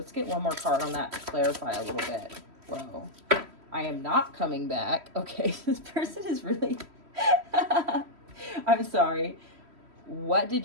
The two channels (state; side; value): late; left; 3.1 ms